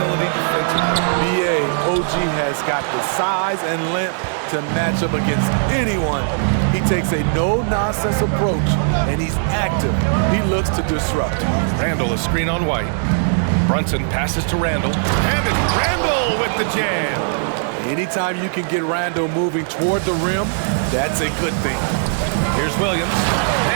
defensively. BA, OG has got the size and length to match up against anyone. He takes a no-nonsense approach, and he's active. He looks to disrupt. Randall, a screen on White. Brunson passes to Randall. And it's Randall with the jam. Anytime you can get Randall moving toward the rim, that's a good thing. Here's Williams.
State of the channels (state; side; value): silent; left; 67 dB below the other